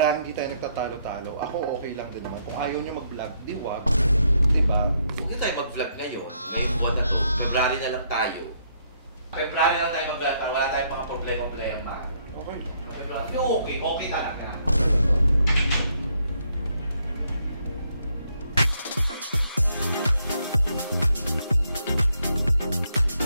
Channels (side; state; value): both; inverted; correlation -0.73